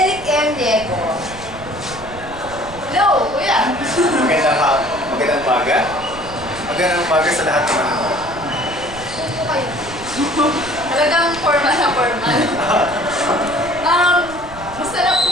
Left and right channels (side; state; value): right; noise; rumble, 16 dB below the sound